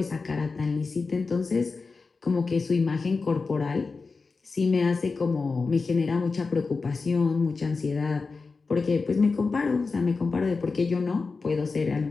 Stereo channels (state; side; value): quieter; right; 4.3 dB